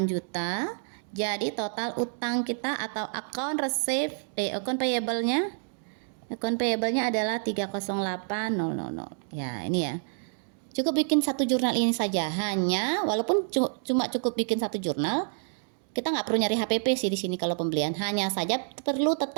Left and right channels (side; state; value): left; silent; digital silence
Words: juta. Jadi total utang kita atau account account payable-nya adalah 308.000. Ya, ini ya. Cukup bikin satu jurnal ini saja. Hanya walaupun cuma cukup bikin satu jurnal, kita nggak perlu nyari HPP sih di sini kalau pembelian. Hanya saja perlu